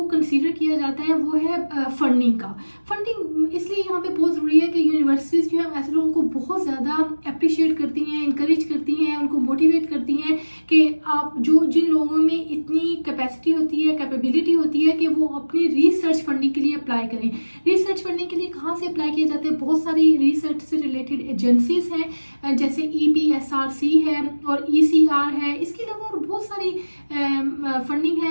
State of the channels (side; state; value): both; inverted; correlation -1.00